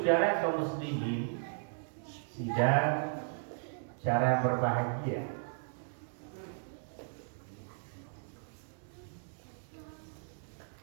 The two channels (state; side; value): silent; left; digital silence